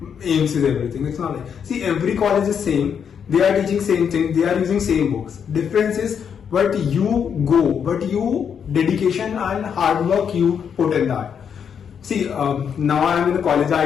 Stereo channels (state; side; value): quieter; right; 7.5 dB